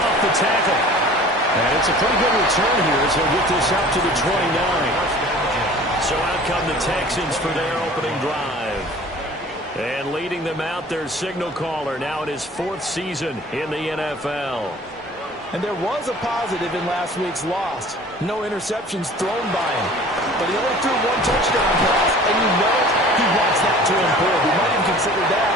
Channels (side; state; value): both; normal; correlation 0.46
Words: the tackle. And it's a pretty good return here as he'll get this out to the 29. So out come the Texans for their opening drive. And leading them out, their signal caller, now in his 4th season in the NFL. And there was a positive in last week's loss. No interceptions thrown by him. But he only threw 1 touchdown pass, and you know he wants that to improve. He might even consider that